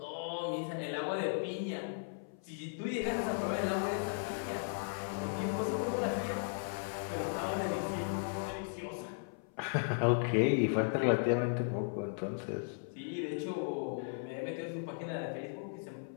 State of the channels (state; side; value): silent; right; 53 dB below the other